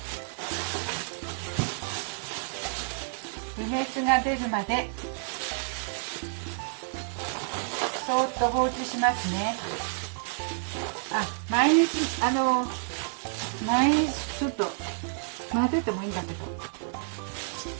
梅酢が出るまでそーっと放置しますね。毎日ちょっと混ぜてもいいんだけど、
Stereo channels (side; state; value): left; silent; 58 dB below the other